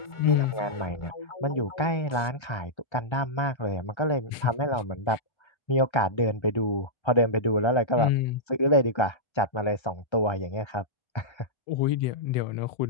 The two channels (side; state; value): right; late; 1.3 ms